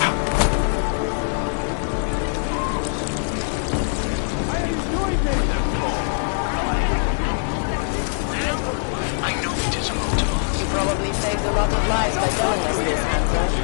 Now, I know it is up to us. You probably saved a lot of lives by telling us this, Hanser.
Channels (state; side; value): silent; right; digital silence